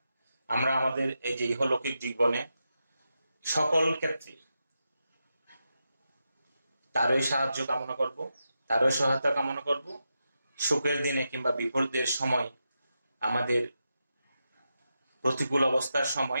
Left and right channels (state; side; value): inverted; both; correlation -0.87